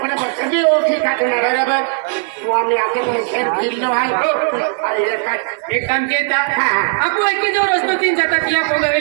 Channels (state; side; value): silent; left; 57 dB below the other